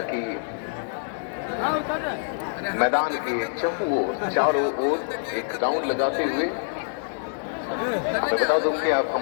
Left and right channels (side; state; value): right; silent; 61 dB below the other